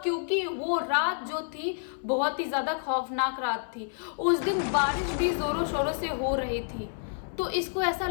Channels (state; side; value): silent; right; 59 dB below the other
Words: क्योंकि वो रात जो थी बहुत ही ज्यादा खौफनाक रात थी। उस दिन बारिश भी जोरों शोरों से हो रही थी। तो इसको ऐसा